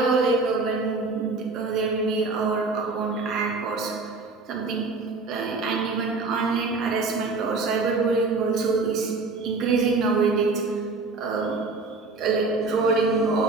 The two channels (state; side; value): quieter; left; 3.8 dB